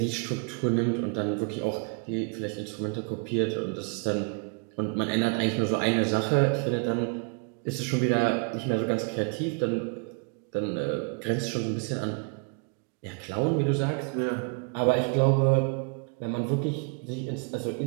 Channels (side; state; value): left; quieter; 36.0 dB